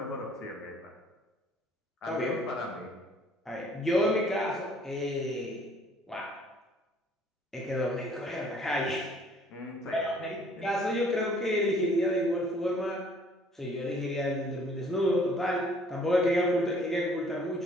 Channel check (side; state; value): both; normal; correlation 0.58